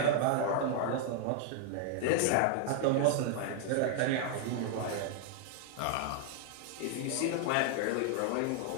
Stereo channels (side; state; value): both; different; correlation 0.00